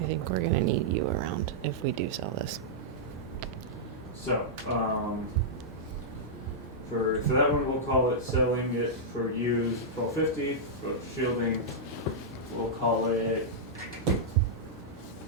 think we're gonna need you around if we do sell this. So for that one, we'll call it selling it for use 1,250. For shielding, we'll call it.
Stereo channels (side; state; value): both; normal; correlation -0.09